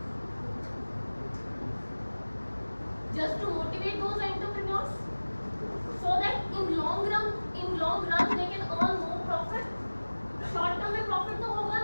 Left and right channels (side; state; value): both; inverted; correlation -1.00